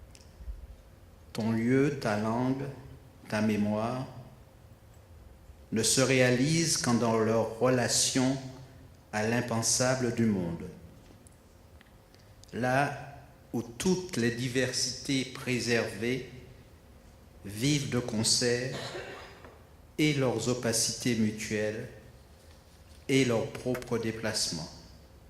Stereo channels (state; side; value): identical; both; correlation 1.00